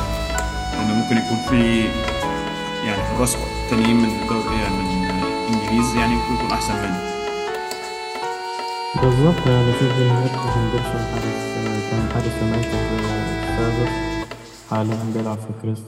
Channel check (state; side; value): identical; both; correlation 1.00